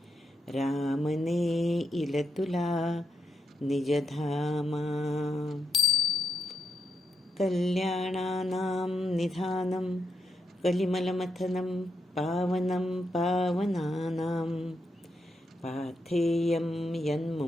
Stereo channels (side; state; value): both; normal; correlation 0.84